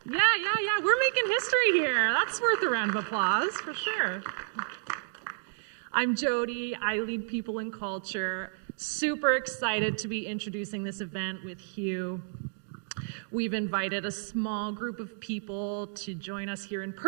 we're making history here. That's worth a round of applause for sure. I'm Jody. I lead people and culture. Super excited to be introducing this event with Hugh. We've invited a small group of people to join us here in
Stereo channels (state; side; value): silent; left; digital silence